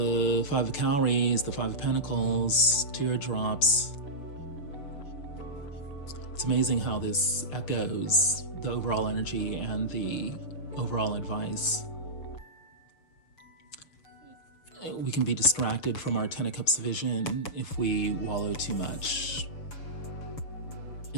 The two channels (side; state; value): right; late; 6.7 ms